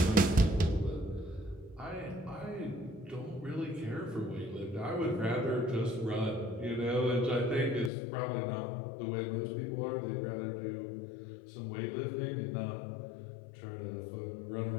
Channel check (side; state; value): right; drops out; at 7.9 s